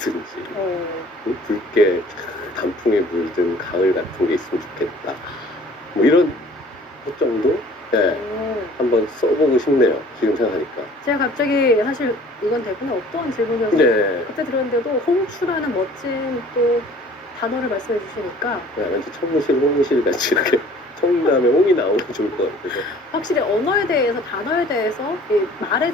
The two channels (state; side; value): normal; both; correlation 0.51